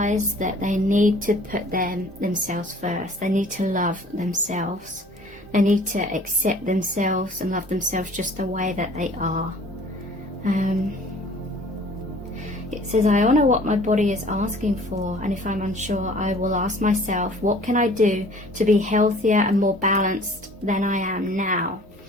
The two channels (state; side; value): normal; both; correlation 0.51